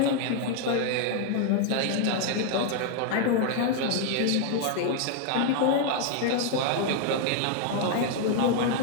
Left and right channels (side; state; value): both; different; correlation 0.00